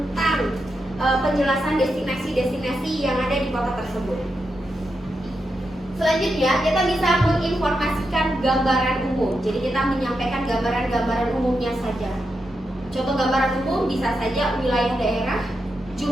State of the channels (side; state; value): both; normal; correlation 0.86